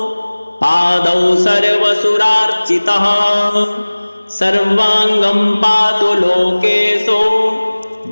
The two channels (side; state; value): both; inverted; correlation -1.00